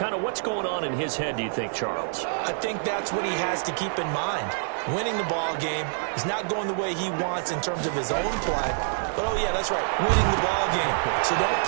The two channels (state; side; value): silent; left; digital silence